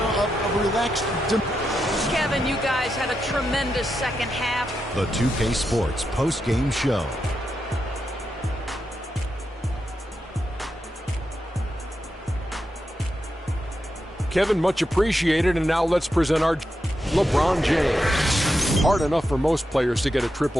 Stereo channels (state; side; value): normal; both; correlation 0.86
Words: a relaxed. Kevin, you guys had a tremendous second half. The 2K Sports post-game show. Kevin, much appreciated. And now let's present our LeBron James. Hard enough for most players to get a